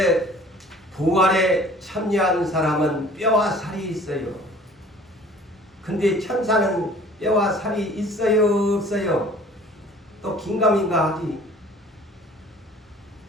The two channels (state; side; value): normal; both; correlation 0.50